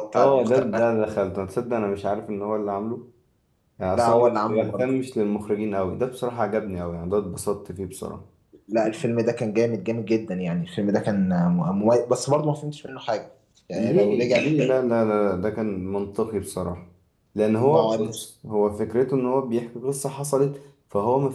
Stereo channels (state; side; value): identical; both; correlation 1.00